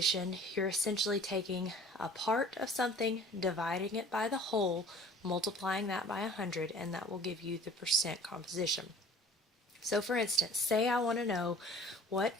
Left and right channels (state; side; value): normal; both; correlation 0.47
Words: you're essentially taking a part of something, dividing it by the whole, multiplying that by 100, and that will give you the percent composition. So for instance, say I want to know what